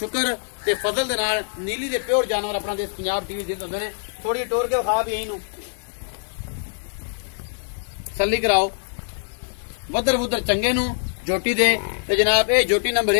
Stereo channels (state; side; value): silent; right; digital silence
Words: ते फजल दे नाल नीली दे प्योर जानवर अपना देश पंजाब टीवी जिंद होंदे ने। थोड़ी टोर के विखा भी यही नूं तसल्ली कराओ वदर वुदर चंगे नूं झोटी दे। ते जनाब ये झोटी नंबर